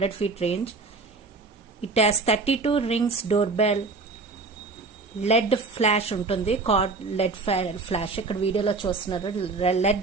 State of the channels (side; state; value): left; quieter; 3.9 dB